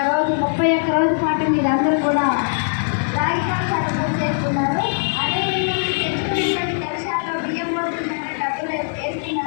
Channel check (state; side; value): silent; right; 65 dB below the other